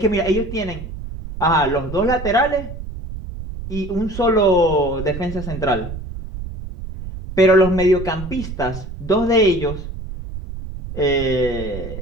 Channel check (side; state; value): right; noise; rumble, 9 dB below the sound